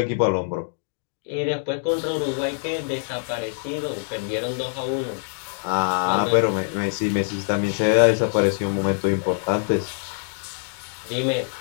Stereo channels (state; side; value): silent; right; digital silence